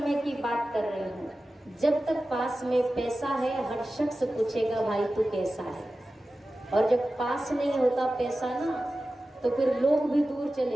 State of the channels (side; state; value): both; normal; correlation 0.95